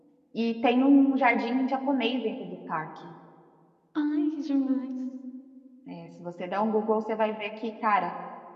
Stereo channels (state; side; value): identical; both; correlation 1.00